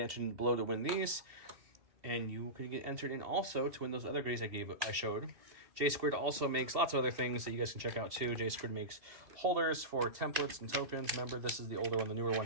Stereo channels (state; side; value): late; left; 2.7 ms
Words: below to win these, and you can get entered in also to win those other grays I showed. J Squared also makes lots of other things that you guys can check out too. J Squared makes holders for templates and tokens. Remember, this is the older one. The newer one